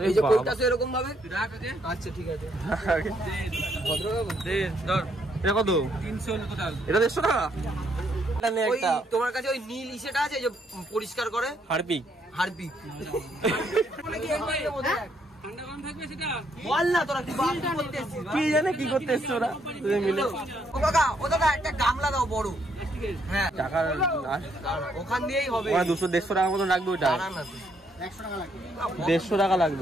এই যে কোডটা আছে এরকম ভাবে। আচ্ছা ঠিক আছে। এটা কত? 300 টোটাল। এটা 150 টাকা। এটা নে একটা। তোমার কাছে ওই নীল ইসেটা আছে যে পরিষ্কার করে? হারপিক। হারপিক। বল না তোরা কি করতে এসেছিস? কি জানে কি করতে এসছো ওরা দুজন মিলে। ও কাকা, ও দাদা একটা গামলা দাও বড়। হ্যাঁ টাকা ওখান দিয়েই হবে। 200-150 টাকা মতো লাগবে ওটা। দাঁড়া না তুই। 150 টাকা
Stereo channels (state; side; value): normal; both; correlation 0.72